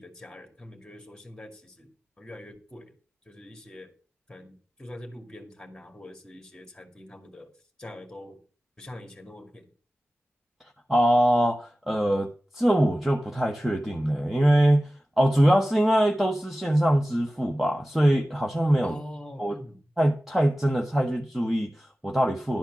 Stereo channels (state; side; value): normal; both; correlation 0.96